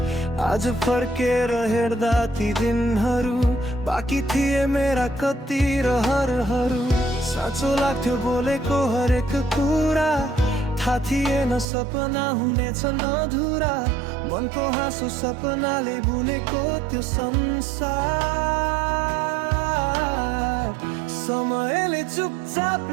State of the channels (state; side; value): drops out; left; at 11.7 s